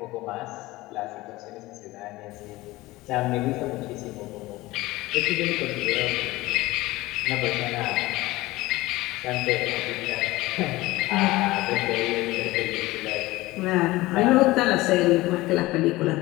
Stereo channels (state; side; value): quieter; right; 19.2 dB